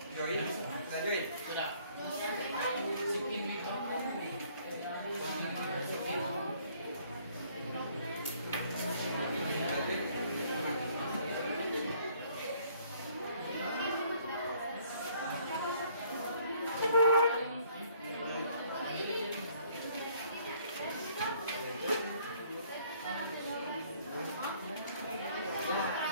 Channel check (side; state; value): both; inverted; correlation -0.62